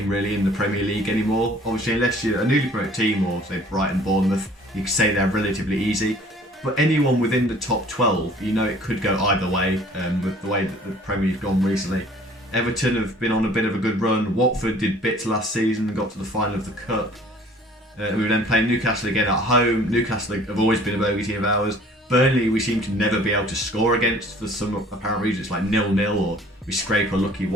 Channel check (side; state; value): both; normal; correlation 0.52